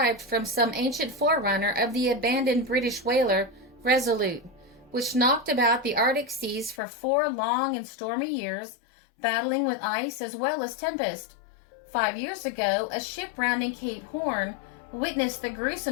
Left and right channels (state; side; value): drops out; right; at 6.8 s